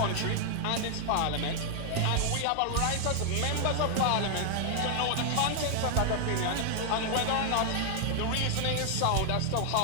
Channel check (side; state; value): both; different; correlation 0.00